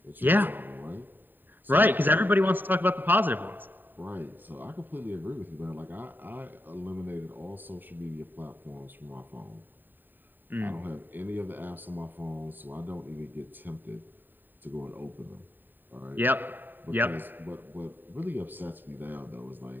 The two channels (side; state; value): left; late; 0.092 ms